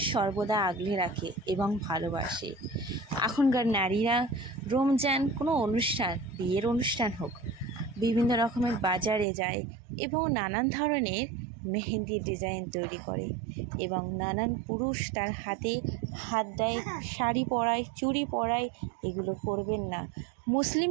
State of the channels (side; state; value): left; drops out; at 9.2 s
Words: সর্বদা আগলে রাখে এবং ভালোবাসে। এখনকার নারীরা রমজান কোনো অনুষ্ঠান, বিয়ের অনুষ্ঠান হোক, বিভিন্ন রকমের বাজারে যায় এবং নানান ধরনের মেহেন্দির ডিজাইন তৈরি করে এবং নানান পুরুষ তার হাতে হাত দেয়, শাড়ি পরায়, চুড়ি পরায়। এগুলো করবেন না।